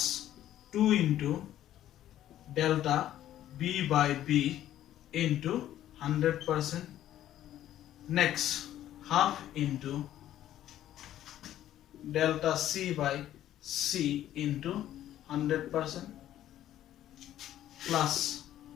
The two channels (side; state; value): right; quieter; 12.4 dB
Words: 2 into delta b by b into 100% next half into delta c by c into 100% plus